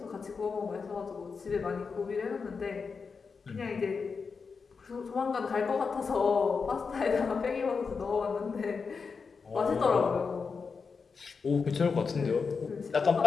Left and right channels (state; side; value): quieter; right; 5.2 dB